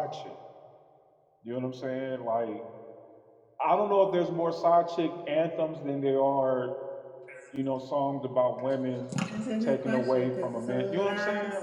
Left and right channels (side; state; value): both; identical; correlation 1.00